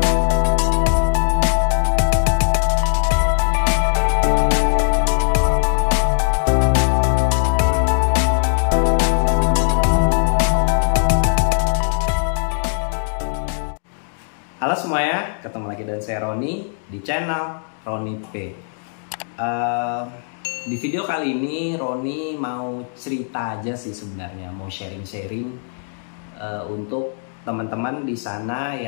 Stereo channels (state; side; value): silent; right; digital silence